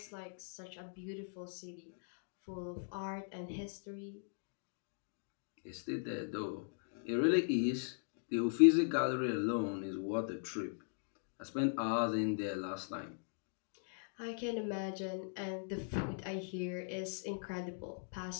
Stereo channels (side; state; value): right; silent; digital silence